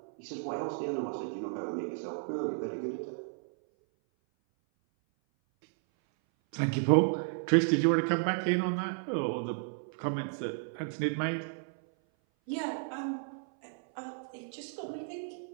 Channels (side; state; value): left; silent; 56 dB below the other